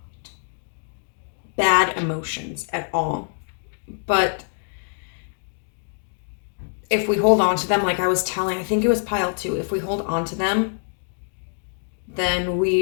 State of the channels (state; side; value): silent; right; digital silence